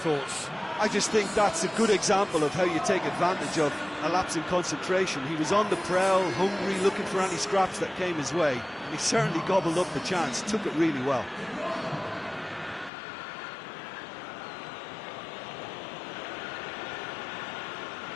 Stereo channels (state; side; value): drops out; right; at 12.9 s